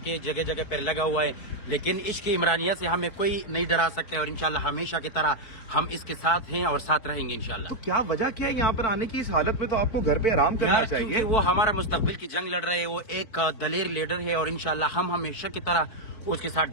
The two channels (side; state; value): right; late; 4.5 ms